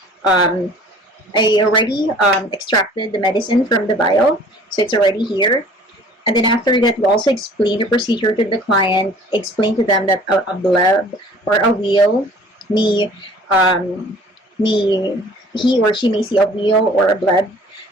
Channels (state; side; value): normal; both; correlation 0.50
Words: I already extracted the medicine from the vial, so it's already here. And then after that, we also explain the procedure to the client, explain to them that a bleb or a wheal may he or she may see a wheal or a bleb